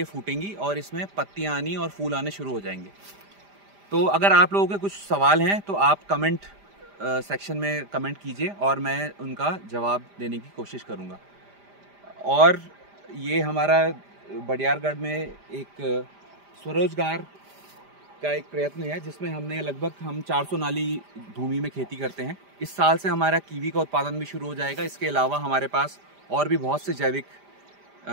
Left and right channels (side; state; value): left; late; 5.0 ms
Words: फूटेंगी और इसमें पत्तियाँ आनी और फूल आने शुरू हो जाएंगे। तो अगर आप लोगों के कुछ सवाल हैं तो आप कमेंट सेक्शन में कमेंट कीजिए और मैं उनका जवाब देने की कोशिश करूँगा। और ये हमारा बडियारगढ़ में एक स्वरोजगार का एक प्रयत्न है जिसमें हमने लगभग हम 400 नाली भूमि में खेती करते हैं। इस साल से हमारा कीवी का उत्पादन भी शुरू हो जाएगा। इसके अलावा हमारे पास और भी बहुत से जैविक